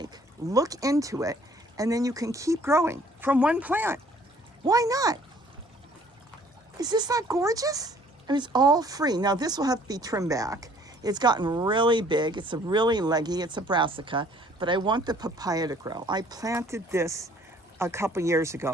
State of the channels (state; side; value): normal; both; correlation 0.58